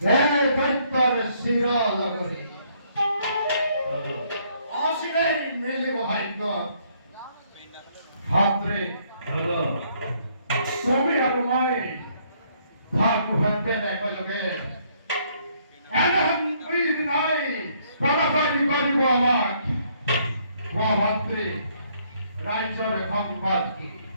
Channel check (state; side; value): inverted; both; correlation -0.67